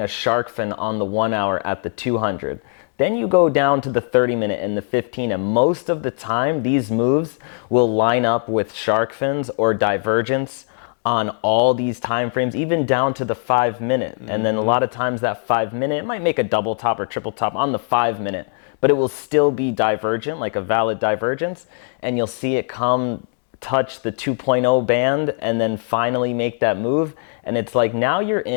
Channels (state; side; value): silent; right; 62 dB below the other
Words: a shark fin on the 1 hour at the 200. Then you go down to the 30 minute and the 15, and most of the time these moves will line up with shark fins or divergence on all these time frames, even down to the 5 minute. And then a lot of times that 5 minute, it might make a double top or triple top on the 5 minute, but it will still be divergent, like a valid divergence. And you'll see it come touch the 2.0 band and then finally make that move. And it's like, now you're